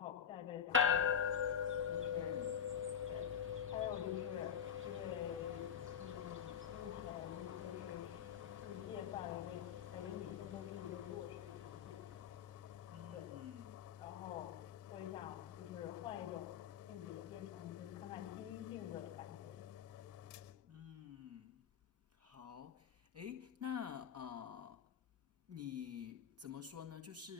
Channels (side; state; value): right; quieter; 8.4 dB